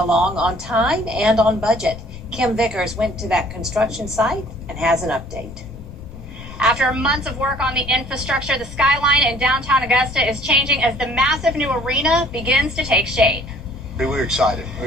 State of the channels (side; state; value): left; noise; rumble, 16 dB below the sound